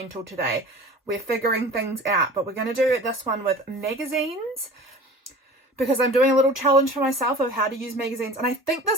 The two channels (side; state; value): both; normal; correlation 0.40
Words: today. We're figuring things out, but we're going to do this one with magazines because I'm doing a little challenge for myself of how to use magazines. And I think